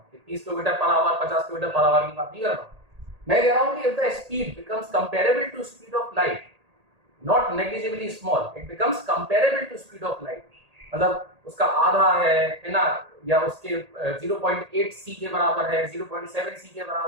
कि 30 kilometre per hour 50 kilometre per hour की बात नहीं कर रहा हूँ। मैं कह रहा हूँ कि if the speed becomes comparable to speed of light, not negligibly small, it becomes comparable to speed of light, मतलब उसका आधा है ना, या उसके 0.8 c के बराबर है, 0.7 c के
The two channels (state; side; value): late; left; 1.8 ms